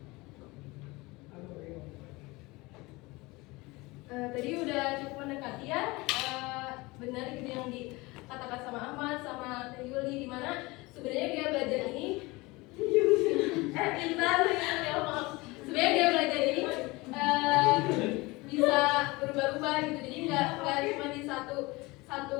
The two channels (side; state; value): right; quieter; 23.0 dB